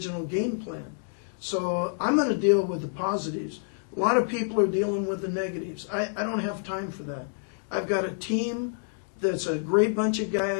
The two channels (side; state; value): right; silent; digital silence